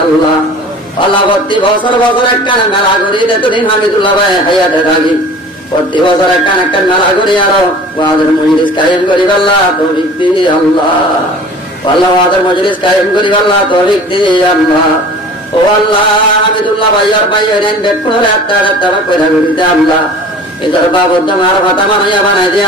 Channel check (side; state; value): both; normal; correlation 0.44